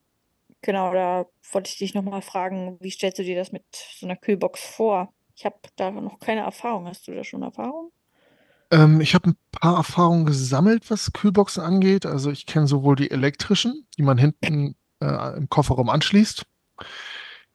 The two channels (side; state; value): both; identical; correlation 1.00